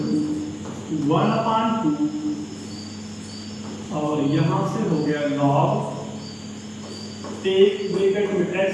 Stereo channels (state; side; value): identical; both; correlation 1.00